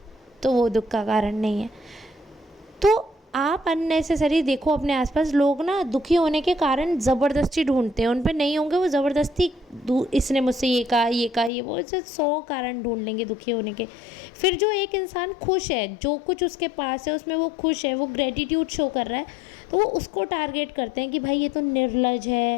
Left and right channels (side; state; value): right; drops out; at 11.5 s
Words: तो वो दुख का कारण नहीं है। तो आप अननेसेसरी देखो अपने आसपास लोग ना दुखी होने के कारण ज़बरदस्ती ढूंढते हैं, उन पे नहीं होंगे वो ज़बरदस्ती, इसने मुझसे ये कहा, ये कहा, ये वो, ऐसे 100 कारण ढूंढ लेंगे दुखी होने के। फिर जो एक इंसान खुश है, जो कुछ उसके पास है उसमें वो खुश है, वो ग्रेटिट्यूड शो कर रहा है, तो वो उसको टारगेट करते हैं कि भाई ये तो निर्लज